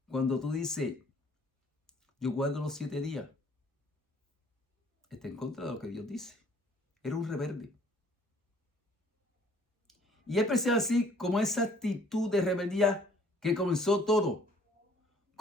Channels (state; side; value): normal; both; correlation 0.58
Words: Cuando tú dices: yo guardo los 7 días, está en contra de lo que Dios dice. Era un rebelde. Y es precisamente así como esa actitud de rebeldía que comenzó todo.